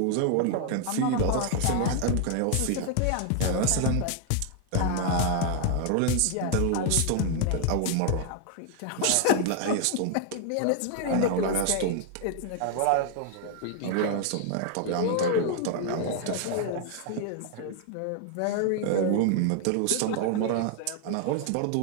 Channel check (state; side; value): different; both; correlation 0.00